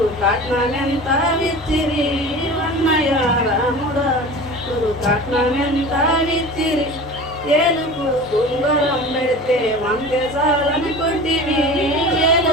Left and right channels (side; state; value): both; normal; correlation 0.36